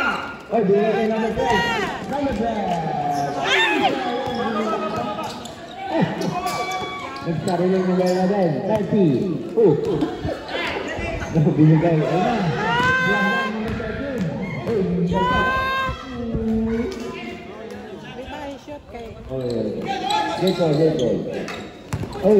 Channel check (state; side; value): identical; both; correlation 1.00